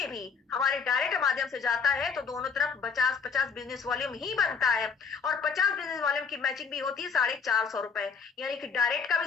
भी हमारे डायरेक्ट माध्यम से जाता है, तो दोनों तरफ 50-50 बिजनेस वॉल्यूम ही बनता है, और 50 बिजनेस वॉल्यूम की मैचिंग भी होती है 450 रुपए, यानी कि डायरेक्ट का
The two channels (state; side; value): quieter; right; 5.8 dB